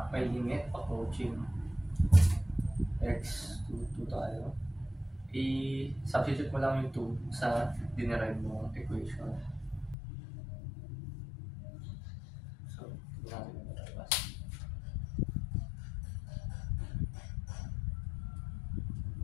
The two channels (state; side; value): drops out; right; at 10.0 s